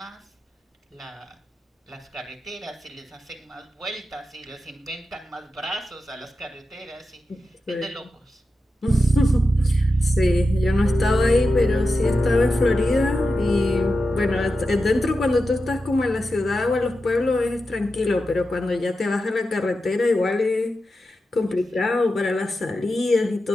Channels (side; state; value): both; normal; correlation 0.90